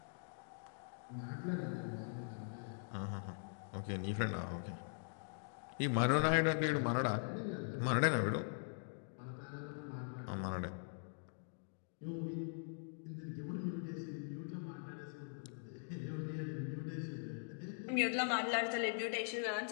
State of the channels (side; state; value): right; silent; digital silence